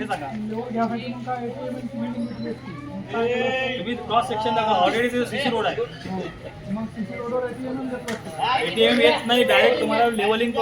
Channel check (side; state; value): both; identical; correlation 1.00